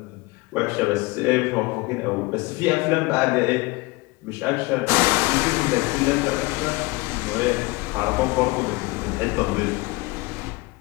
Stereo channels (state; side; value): quieter; right; 23.7 dB